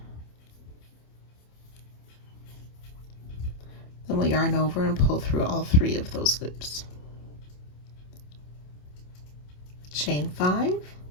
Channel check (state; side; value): late; right; 27 ms